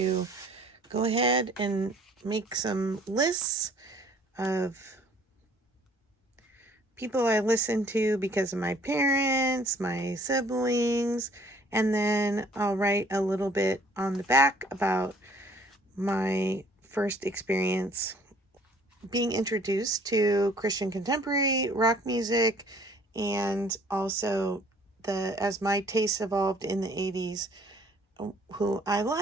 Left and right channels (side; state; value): both; normal; correlation 0.57